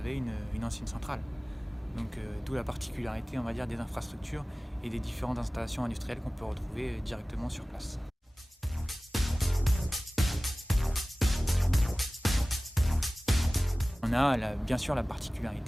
une ancienne centrale. Donc d'où la particularité, on va dire, des infrastructures et des différentes installations industrielles qu'on peut retrouver directement sur place. On a bien sûr la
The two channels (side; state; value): both; normal; correlation 0.98